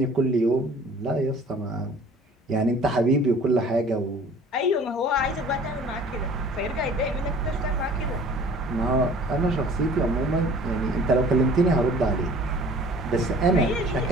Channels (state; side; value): normal; both; correlation 0.49